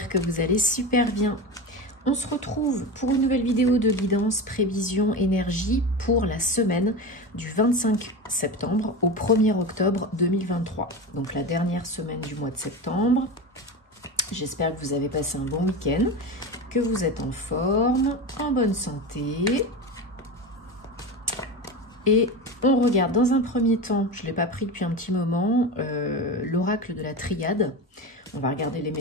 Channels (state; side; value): normal; both; correlation 0.24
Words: que vous allez super bien. On se retrouve pour une nouvelle vidéo de guidance, prévision, énergie pour la semaine du 25 septembre au 1er octobre 2023. Donc la dernière semaine du mois de septembre. J'espère que vous avez passé un bon week-end, que vous êtes en forme, en bonne santé. Et on regarde dans un premier temps, je ne l'ai pas pris depuis un petit moment, l'oracle de la triade. On va regarder les